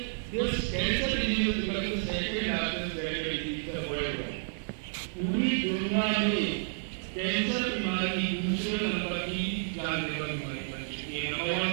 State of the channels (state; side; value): silent; left; digital silence